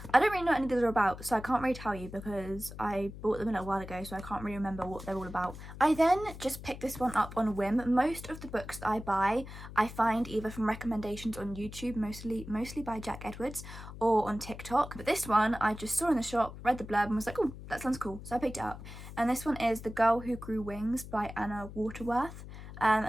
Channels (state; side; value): noise; left; hum, 13 dB below the sound